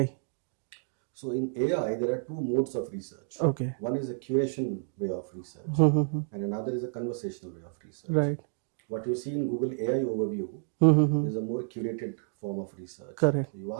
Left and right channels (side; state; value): left; silent; digital silence